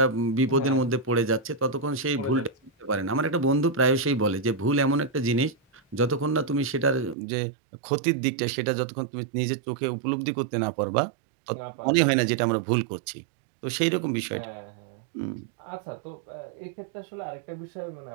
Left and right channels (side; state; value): left; drops out; at 7.2 s